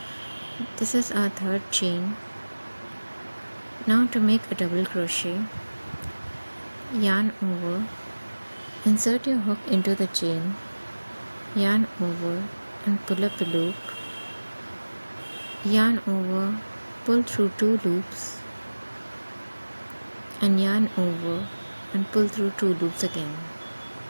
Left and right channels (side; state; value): both; inverted; correlation -1.00